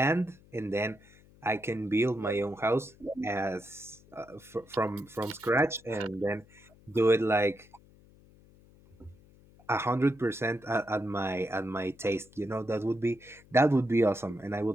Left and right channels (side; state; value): left; noise; hum, 26 dB below the sound